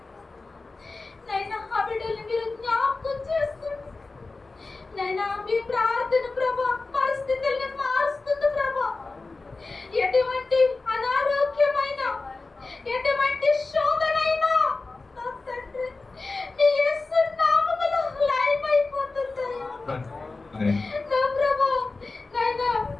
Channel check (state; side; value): quieter; right; 3.7 dB